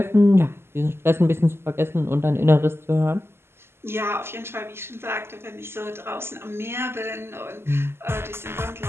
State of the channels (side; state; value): left; late; 0.12 ms